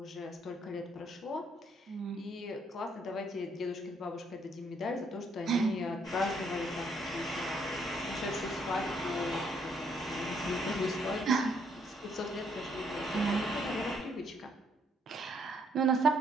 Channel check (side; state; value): both; normal; correlation 0.70